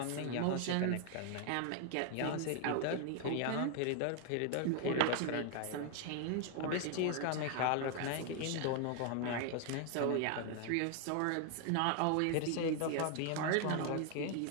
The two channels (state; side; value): different; both; correlation 0.00